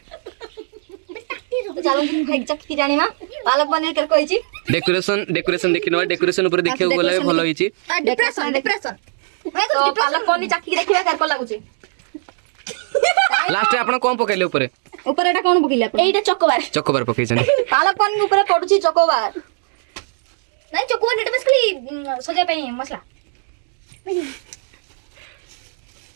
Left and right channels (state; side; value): silent; left; digital silence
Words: तो चलंतु एक्जेक्ट की जानिबा पालक पनीर केत कोईची डेकोरेशन देखिनवा डेकोरेशन ऊपर देखियो गले भलो होईची डिप्रेशन तो पालक पनीर चाकी देखिबा केत को लागुची लास्ट रे आपण कोन पकाइले ऊपर ऊपर एटा कोन पकिले आपण एटा चकोबार पकाइछन पालक पनीर ऊपर पडुची चकोबार नहीं चोको एटा बेसिकली सजा पे मसला